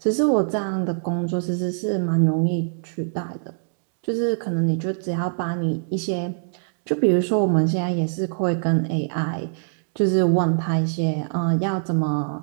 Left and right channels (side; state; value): left; silent; digital silence